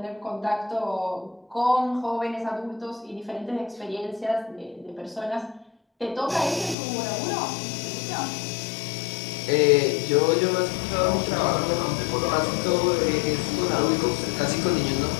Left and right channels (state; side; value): drops out; right; at 6.8 s